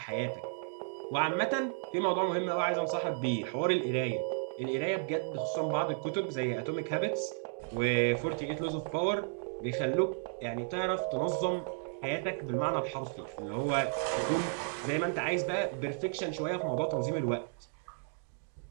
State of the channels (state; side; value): silent; left; 55 dB below the other